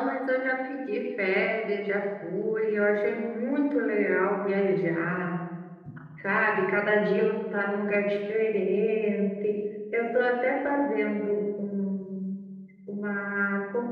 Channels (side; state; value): both; identical; correlation 1.00